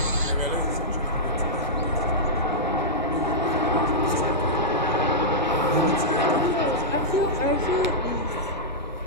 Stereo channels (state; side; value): normal; both; correlation -0.10